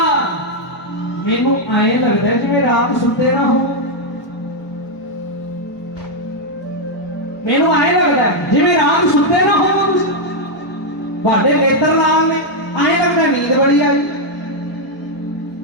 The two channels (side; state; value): right; late; 1.0 ms